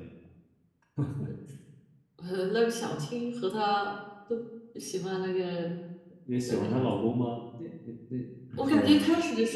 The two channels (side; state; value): both; identical; correlation 1.00